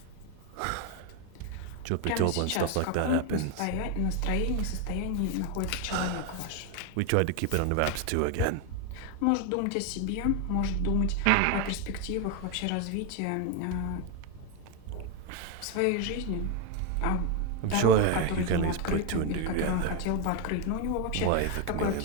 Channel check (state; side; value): different; both; correlation 0.01